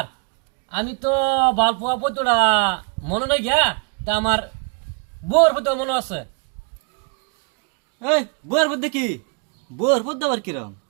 আমি তো বালপোয়া পদ্মটা মনে নাই গিয়া তা আমার বউর পদ্ম মনে আছে এই বউর পদ্ম কি বউর পদ্ম আবার কিরম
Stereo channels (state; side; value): quieter; left; 37.2 dB